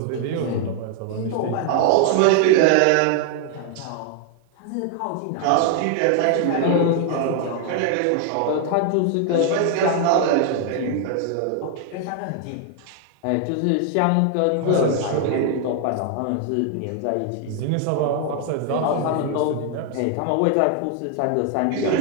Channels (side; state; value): both; different; correlation 0.00